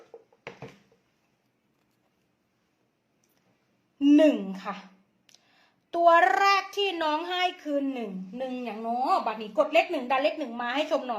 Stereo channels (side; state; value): both; identical; correlation 1.00